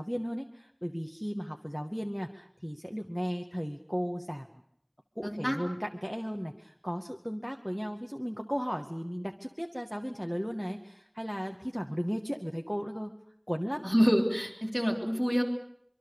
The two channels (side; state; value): both; identical; correlation 1.00